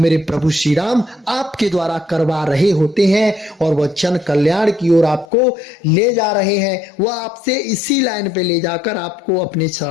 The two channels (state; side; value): drops out; right; at 5.2 s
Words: प्रभु श्री राम आपके द्वारा करवा रहे होते हैं और वह जन कल्याण की ओर आपको ले जा रहे हैं। वह आपसे इसी लाइन पे ले जाकर आपको अपने